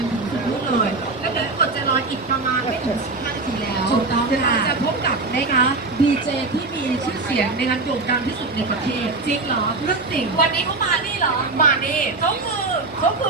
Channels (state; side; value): quieter; left; 3.5 dB